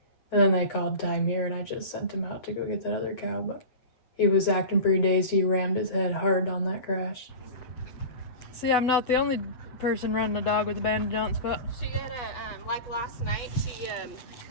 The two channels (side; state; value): right; late; 8.1 ms